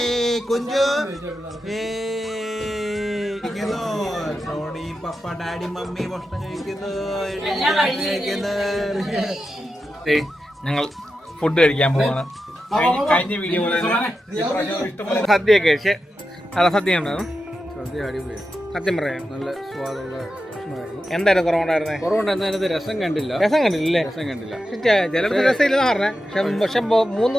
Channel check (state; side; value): normal; both; correlation 0.90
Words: കുഞ്ചു, ടോണി, പപ്പ, ഡാഡി, മമ്മി ഭക്ഷണം കഴിക്കുന്നു. ഞങ്ങൾ ഫുഡ് കഴിക്കാൻ പോവാണ്. കഴിഞ്ഞ വീഡിയോ സദ്യയൊക്കെ കഴിച്ച് നല്ല സദ്യ ഉണ്ടായിരുന്നു. സദ്യ അടിപൊളിയാണ്. സത്യം പറയാം നല്ല സ്വാദുള്ള ഭക്ഷണമായിരുന്നു. എന്തായാലും കുറവുണ്ടായിരുന്നേ? കുറവുണ്ടായിരുന്നതിനകത്ത് രസം കണ്ടില്ല. രസം കണ്ടില്ലേ? രസം കണ്ടില്ല. ചിലർക്ക് രസമില്ലെന്ന് പറഞ്ഞേ. പക്ഷെ 3